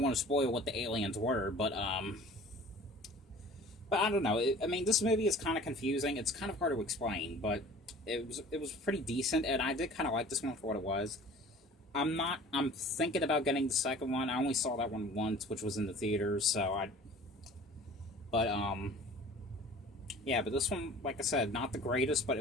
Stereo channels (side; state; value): both; normal; correlation 0.46